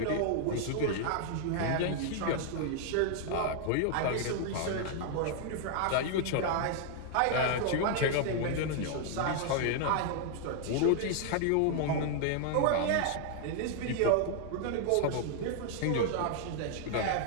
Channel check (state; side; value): different; both; correlation 0.00